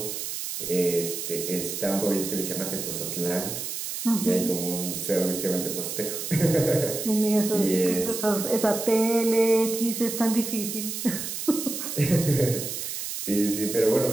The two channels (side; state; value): right; noise; hiss, 5 dB below the sound